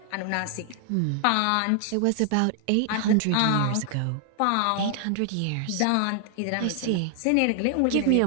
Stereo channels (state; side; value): different; both; correlation 0.00